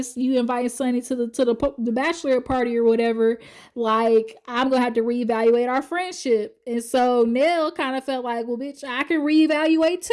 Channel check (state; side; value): identical; both; correlation 1.00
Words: you inviting Sunny to the bachelorette party or whatever, like, I'm gonna have to reevaluate our friendship. And so Nell kind of felt like, well, bitch, I can reevaluate